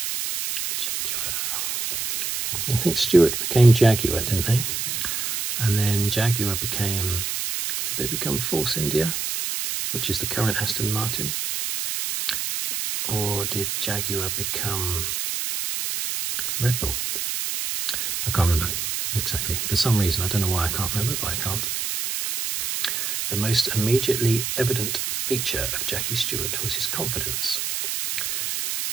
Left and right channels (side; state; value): right; noise; hiss, 2 dB below the sound